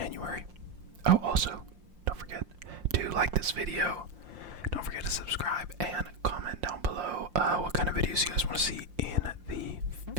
Oh, also, don't forget to like this video. Don't forget to subscribe and comment down below what kind of videos you guys want to see in the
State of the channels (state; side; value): late; left; 5.7 ms